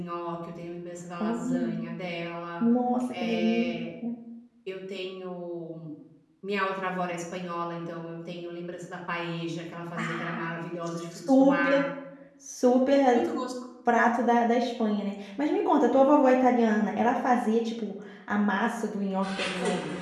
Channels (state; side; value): identical; both; correlation 1.00